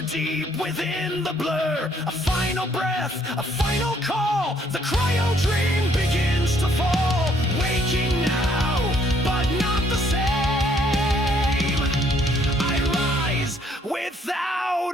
deep within the blur. A final breath, a final call. The CryoDream begins to fall. Waking now, but not the same. I rise without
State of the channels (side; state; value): both; normal; correlation 0.66